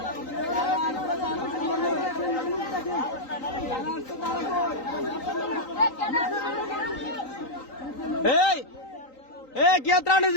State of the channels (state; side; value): late; right; 3.9 ms